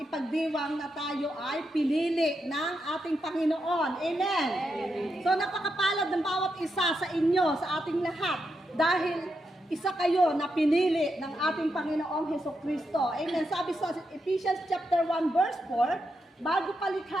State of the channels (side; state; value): both; normal; correlation 0.84